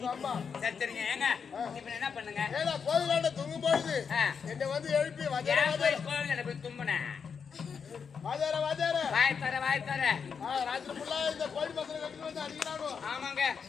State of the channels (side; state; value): right; quieter; 6.3 dB